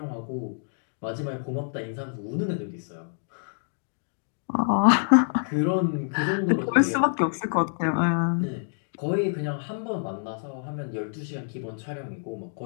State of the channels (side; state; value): right; silent; digital silence